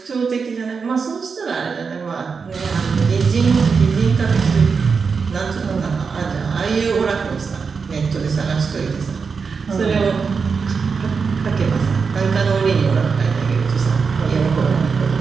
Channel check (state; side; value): quieter; left; 5.4 dB